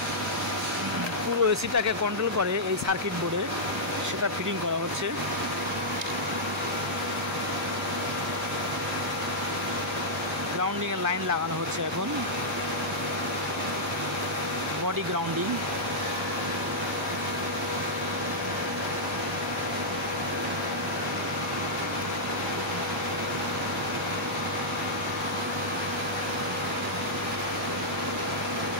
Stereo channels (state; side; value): normal; both; correlation -0.09